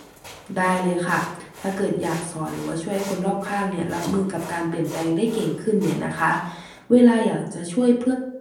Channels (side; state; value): both; identical; correlation 1.00